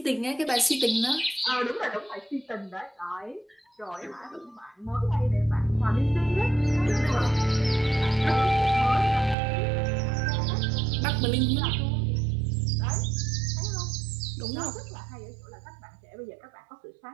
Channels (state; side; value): drops out; left; at 9.3 s